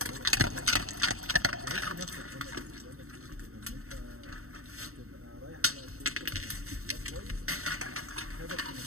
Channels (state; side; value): late; left; 0.64 ms